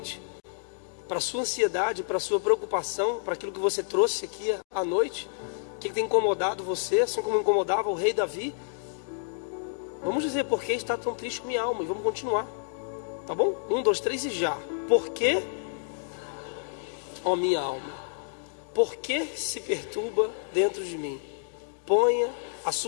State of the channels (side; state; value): right; silent; digital silence